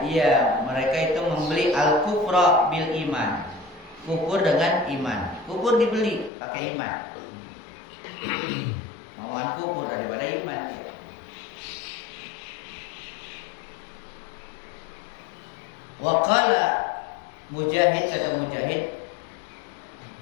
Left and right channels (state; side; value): drops out; right; at 6.3 s